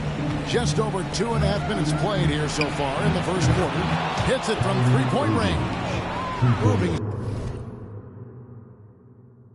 Just over 2.5 minutes played here so far in the first quarter. Hits it from three-point range. Moving.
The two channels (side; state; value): both; identical; correlation 1.00